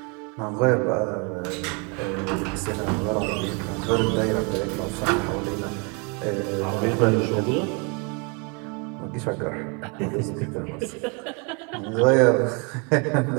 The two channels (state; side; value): quieter; left; 33.5 dB